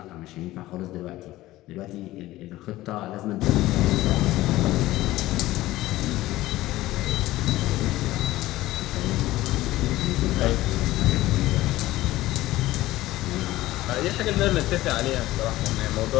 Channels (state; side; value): quieter; right; 16.7 dB